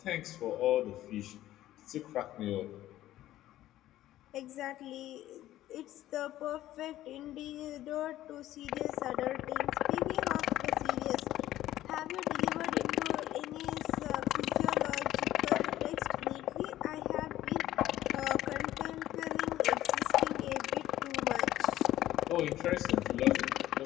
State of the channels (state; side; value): quieter; right; 14.0 dB